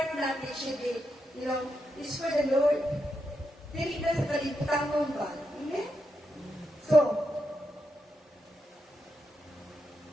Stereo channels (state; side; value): normal; both; correlation 0.84